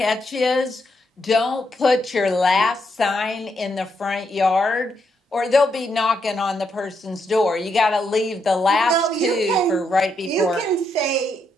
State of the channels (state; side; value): normal; both; correlation 0.79